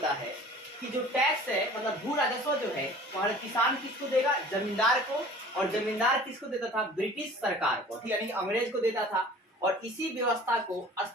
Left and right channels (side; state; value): both; normal; correlation 0.46